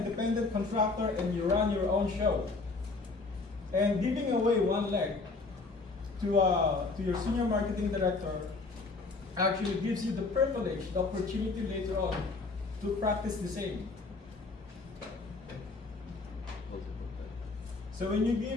contractor and you run your own show. And giving away one leg to your senior marketing director actually gives you the privilege, the opportunity later on to practice the same. So when you give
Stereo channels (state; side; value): quieter; right; 3.8 dB